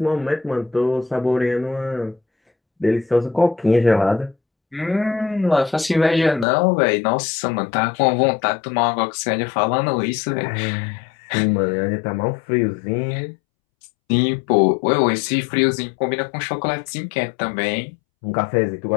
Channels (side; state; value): right; drops out; at 6.5 s